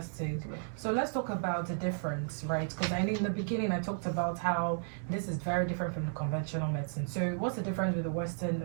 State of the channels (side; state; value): left; silent; digital silence